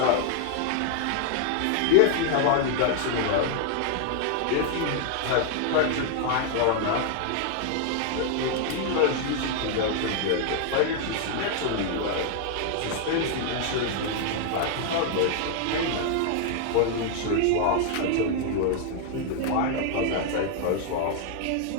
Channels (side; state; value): both; different; correlation 0.00